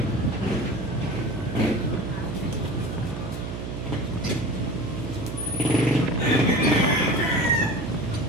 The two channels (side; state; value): right; noise; hum, 6 dB below the sound